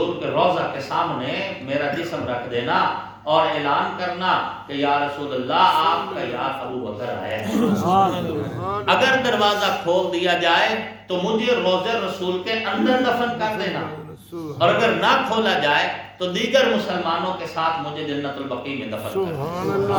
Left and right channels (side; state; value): both; identical; correlation 1.00